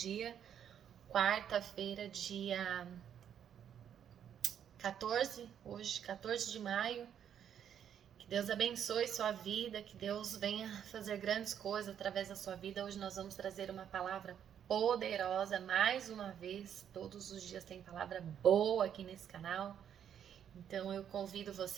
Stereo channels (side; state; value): left; quieter; 9.1 dB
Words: quarta-feira, dia 14, hoje, 14 de maio. Que Deus abençoe sua vida, que Deus venha fazer grandes coisas através da sua vida. Hoje nós vamos trazer uma palavra poderosa, mais uma vez, todos os dias tem palavra boa aqui nesse canal. Então eu convido